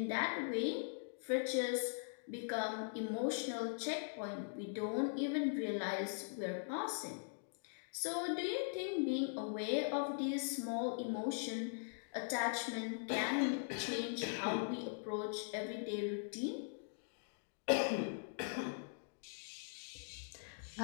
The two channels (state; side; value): silent; right; digital silence